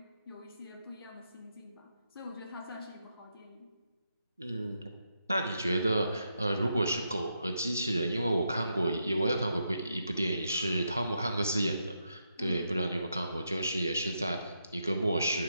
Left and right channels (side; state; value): both; inverted; correlation -0.81